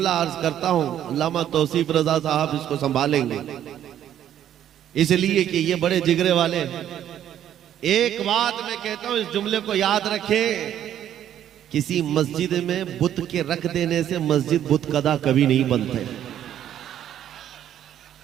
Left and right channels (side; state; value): left; quieter; 10.8 dB